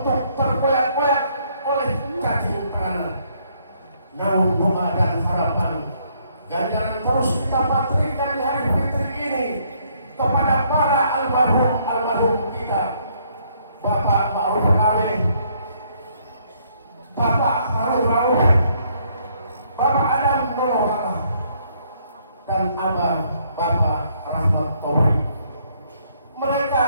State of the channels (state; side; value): inverted; both; correlation -0.68